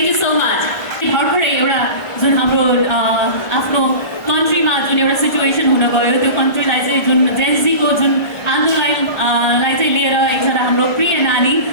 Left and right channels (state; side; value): late; right; 1.4 ms